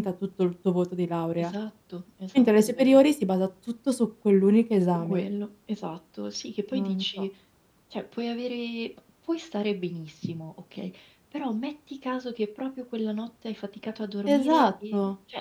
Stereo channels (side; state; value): both; identical; correlation 1.00